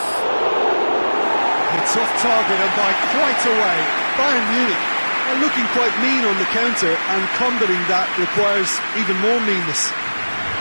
It's off target and by quite a way. Bayern Munich are looking quite mean on the counter, and combating that requires even more meanness.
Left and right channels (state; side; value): inverted; both; correlation -1.00